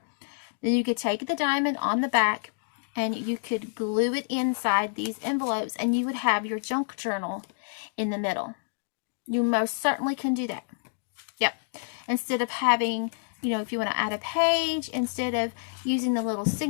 Then you could take the diamond on the back, and you could glue it inside these envelopes, and you would have your junk journal in the middle. You most certainly can do that. Yep. Instead of having, if you want to add a page, instead of using the little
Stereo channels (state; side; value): silent; right; digital silence